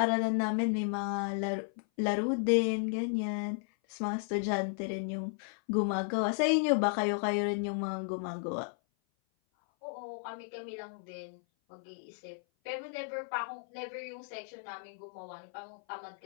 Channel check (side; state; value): right; silent; 55 dB below the other